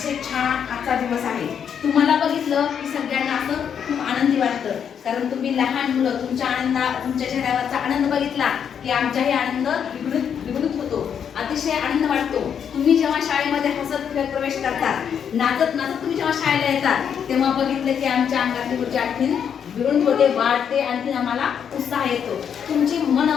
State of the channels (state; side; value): quieter; right; 7.9 dB